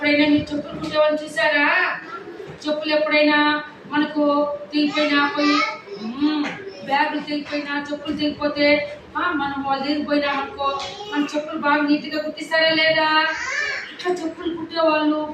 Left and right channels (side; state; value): both; identical; correlation 1.00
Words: మీరు చెప్పులు కుట్టేవాళ్ళని చూసారా? చెప్పులు ఎప్పుడైనా మనకు తెగిపోయినా పోయి బ్యాగులు తెగిపోయినా చెప్పులు తెగిపోతే మనం వాళ్ళు తెగిపోయినా అనుకో మన చెప్పులు బాగా నీట్గా కుట్టిస్తారా లేదా? ఇట్లా చెప్పులు కుట్టేవాళ్ళు,